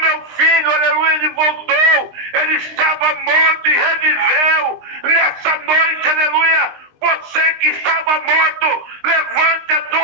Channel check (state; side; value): late; left; 20 ms